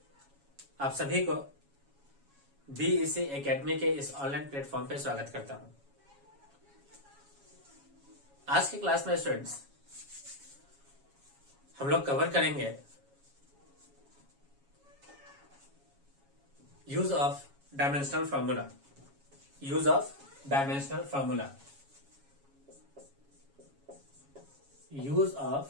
आप सभी को बीईसी एकेडमी के इस ऑनलाइन प्लेटफॉर्म पे स्वागत करता हूं। आज की क्लास में स्टूडेंट्स हम लोग कवर करेंगे use of dimensional formula. Use of dimensional formula. Use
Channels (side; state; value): left; late; 7.2 ms